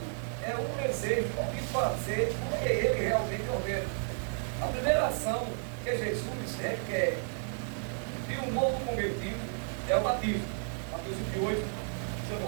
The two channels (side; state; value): left; silent; 56 dB below the other